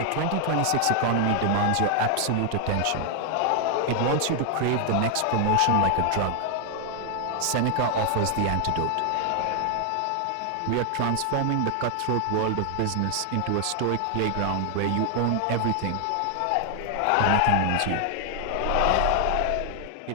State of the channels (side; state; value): both; different; correlation 0.00